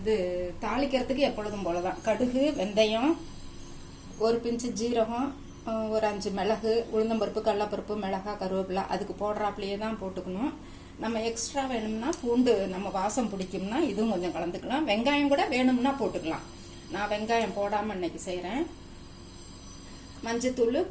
தாளிக்கிறதுக்கு எப்பொழுதும் போலதான் கடுகு, வெந்தயம், ஒரு பிஞ்சு ஜீரகம், ஒரு 5 மிளகு, உளுந்தம்பருப்பு, கடலப்பருப்பு, மிளகாய், கருவேப்பிலை அதுக்கு போடுறாப்புலையே தான் போட்டுக்கணும். நம்ம எக்ஸ்ட்ரா வேணும்னா பூண்டு நம்ம வாசம் பிடிக்கும்னா இதுவும் கொஞ்சம் கலந்துக்கலாம். வெங்காயம் கூட வேணும்னா போட்டுக்கலாம். நான் வெங்காயம் போடாமல் இன்னைக்கு செய்கிறேன். மஞ்சத்தூள்,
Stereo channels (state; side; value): identical; both; correlation 1.00